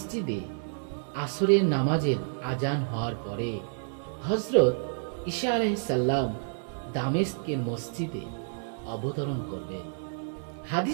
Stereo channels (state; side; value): silent; left; 58 dB below the other